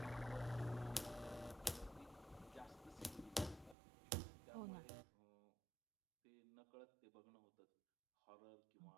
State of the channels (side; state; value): left; drops out; at 3.8 s